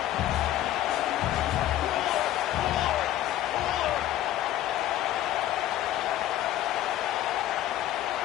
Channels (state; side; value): quieter; right; 13.1 dB